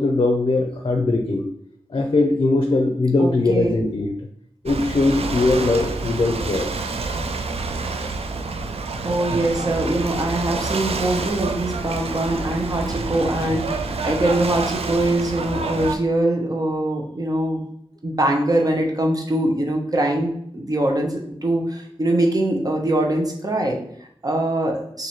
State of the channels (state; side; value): normal; both; correlation 0.79